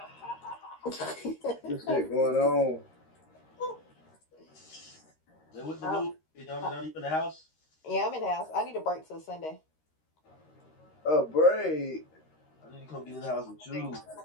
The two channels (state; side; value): late; right; 13 ms